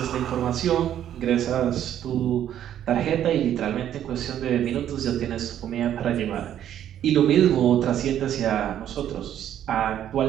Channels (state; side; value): quieter; left; 10.8 dB